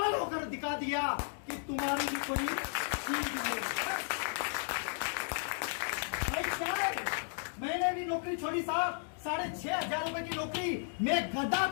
होकर दिखा दिया कि तुम्हारी भी कोई चीज नहीं। भाई क्या है, मैंने भी नौकरी छोड़ी साहब, 6,500 रुपए की नौकरी, मैं गधा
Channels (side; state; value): right; silent; digital silence